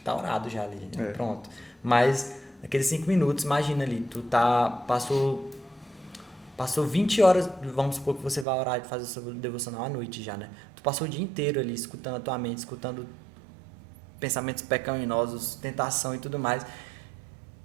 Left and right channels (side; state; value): left; drops out; at 8.5 s